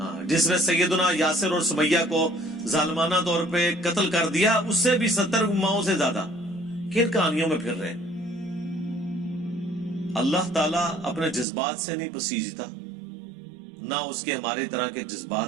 جس نے سیدنا یاسر اور سمیہ کو ظالمانہ طور پہ قتل کر دیا, اس سے بھی 70 ماؤں سے زیادہ. کن کہانیوں میں پھر رہے. اللہ تعالیٰ اپنے جذبات سے نہیں پسیجتا, نہ اس کے ہمارے طرح کے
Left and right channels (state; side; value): drops out; left; at 11.5 s